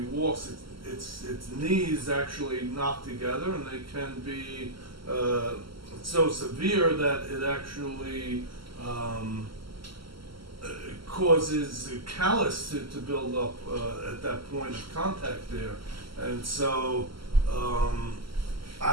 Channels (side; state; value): left; late; 0.74 ms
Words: walks, its knees actually knock together, and they can be so severe that it actually causes callus to build up at that point of contact there. And so